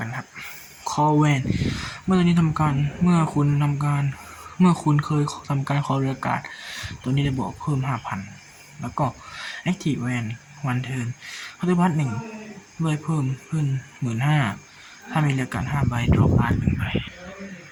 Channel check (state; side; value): identical; both; correlation 1.00